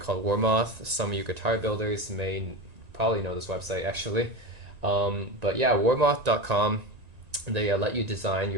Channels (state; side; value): late; left; 1.9 ms